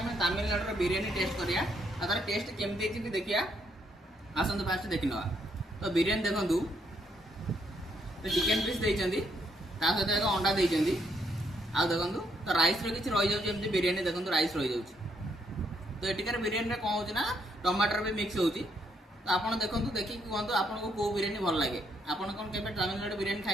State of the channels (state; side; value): normal; both; correlation 0.73